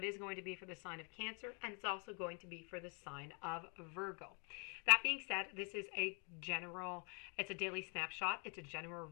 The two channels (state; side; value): quieter; right; 37.9 dB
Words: is going to be for the sign of Cancer and it's also going to be for the sign of Virgo. That being said, this is it's a daily snapshot. It's a general